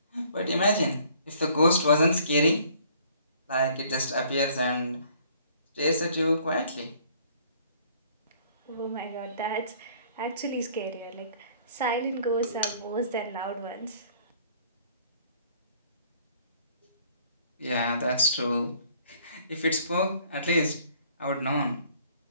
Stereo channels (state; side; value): inverted; both; correlation -0.59